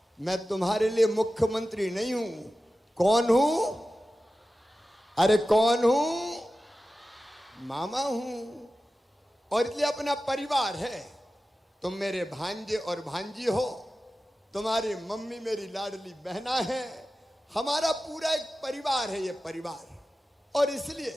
मैं तुम्हारे लिए मुख्यमंत्री नहीं हूं। कौन हूं? अरे कौन हूं? मामा हूं। और इसलिए अपना परिवार है। तुम मेरे भांजे और भांजी हो, तुम्हारी मम्मी मेरी लाडली बहना है, हमारा पूरा एक परिवार है ये परिवार। और इसलिए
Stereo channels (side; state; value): both; normal; correlation 0.94